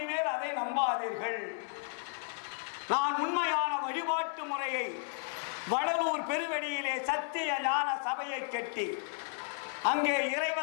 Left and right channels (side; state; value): right; silent; 55 dB below the other